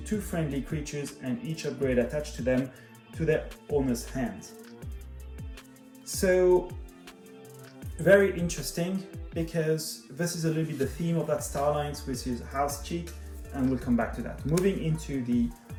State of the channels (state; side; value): identical; both; correlation 1.00